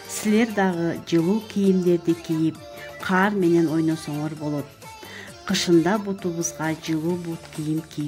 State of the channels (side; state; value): both; identical; correlation 1.00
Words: Силер дагы жылуу кийимдерди кийип, каар менен ойносоңор болот. Кышында бутубузга жылуу бут кийим